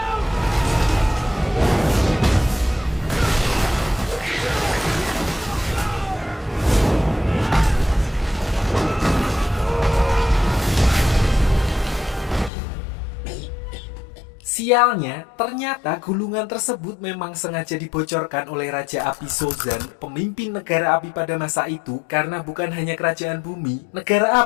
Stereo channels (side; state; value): right; drops out; at 12.5 s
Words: Sialnya, ternyata gulungan tersebut memang sengaja dibocorkan oleh Raja Api Sozan, pemimpin negara api pada masa itu, karena bukan hanya kerajaan bumi, negara